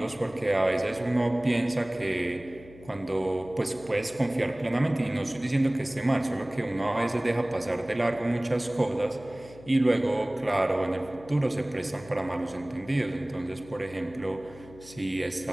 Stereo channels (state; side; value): noise; left; hum, 20 dB below the sound